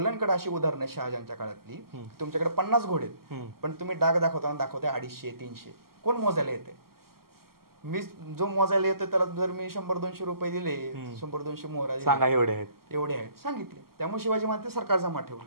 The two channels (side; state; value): left; late; 0.93 ms